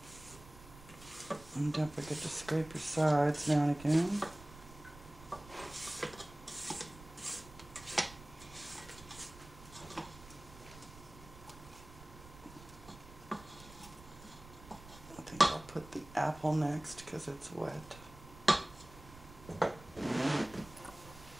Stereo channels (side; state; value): right; noise; rumble, 18 dB below the sound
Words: And don't forget to scrape your sides now and again. I think I'll put the apple next because it's wet.